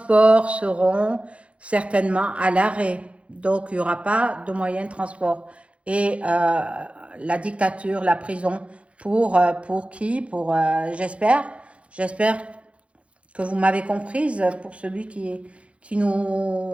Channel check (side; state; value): left; late; 0.061 ms